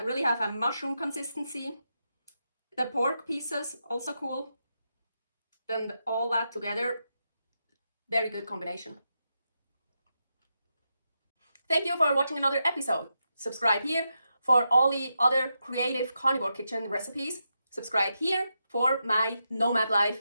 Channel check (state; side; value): inverted; both; correlation -0.85